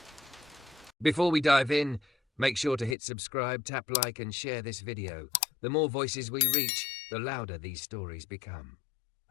Before we dive in, make sure to hit subscribe, tap like and share this video. The more voices we reach, the louder these stories become.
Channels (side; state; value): right; drops out; at 3.0 s